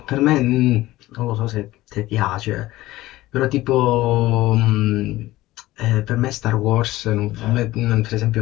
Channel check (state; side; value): quieter; right; 17.1 dB